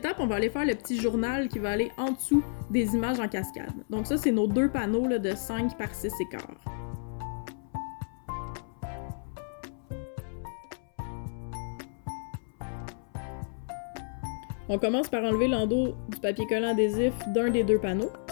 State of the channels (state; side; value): silent; right; 57 dB below the other